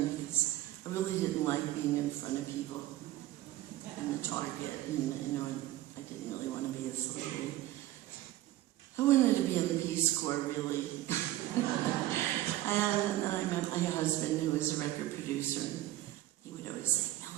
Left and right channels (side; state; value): left; quieter; 15.3 dB